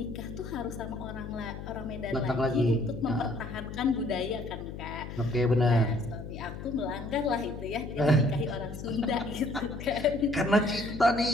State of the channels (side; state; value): left; noise; hum, 9 dB below the sound